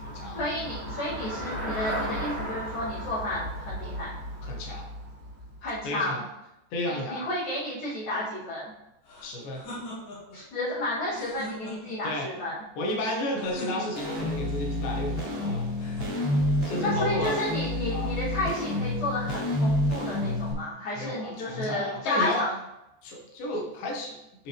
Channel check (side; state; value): right; late; 14 ms